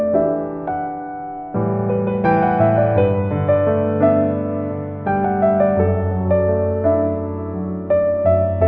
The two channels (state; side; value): identical; both; correlation 1.00